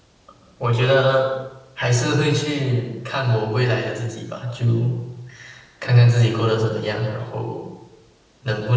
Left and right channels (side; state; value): both; identical; correlation 1.00